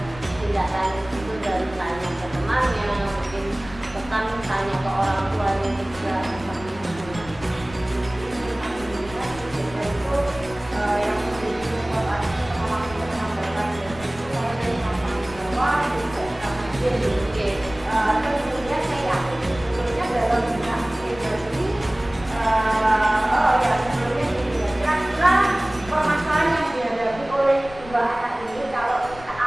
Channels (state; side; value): noise; left; rumble, 17 dB below the sound